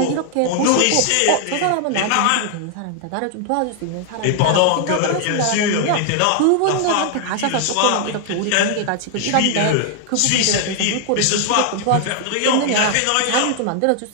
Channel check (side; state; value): both; different; correlation 0.00